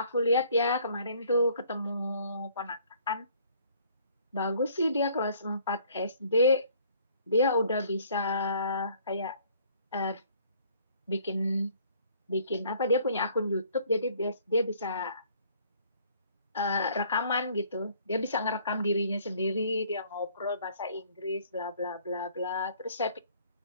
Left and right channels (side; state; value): both; inverted; correlation -0.59